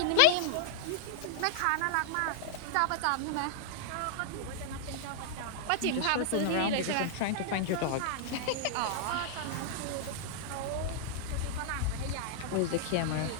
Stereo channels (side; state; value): both; different; correlation -0.01